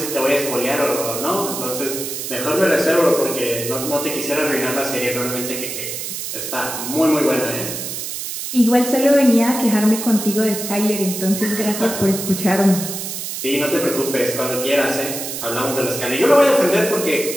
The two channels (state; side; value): noise; right; hiss, 6 dB below the sound